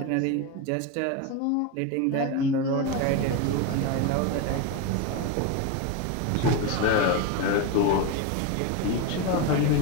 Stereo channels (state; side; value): different; both; correlation 0.04